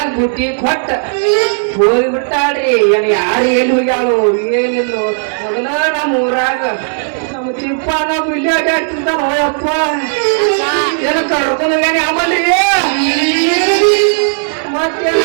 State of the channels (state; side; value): silent; left; digital silence